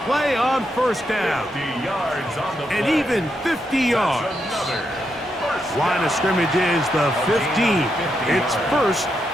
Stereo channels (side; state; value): both; normal; correlation 0.82